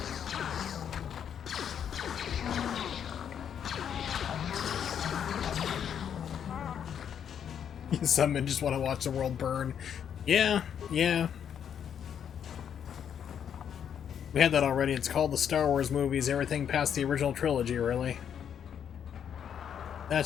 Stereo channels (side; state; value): right; quieter; 8.5 dB